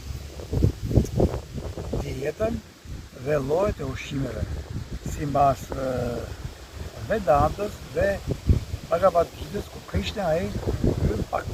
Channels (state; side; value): identical; both; correlation 1.00